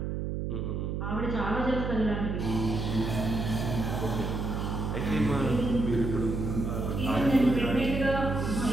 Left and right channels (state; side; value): noise; right; hum, 2 dB below the sound